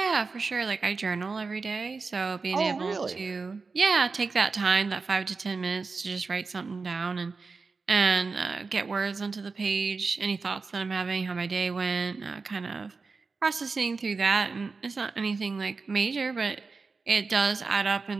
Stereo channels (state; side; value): quieter; left; 4.4 dB